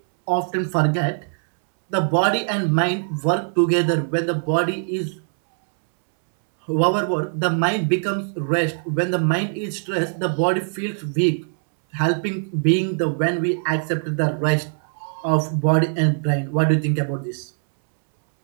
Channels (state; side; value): silent; left; 64 dB below the other